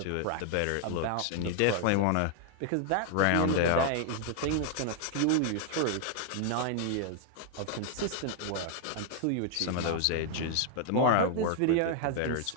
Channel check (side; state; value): both; different; correlation 0.00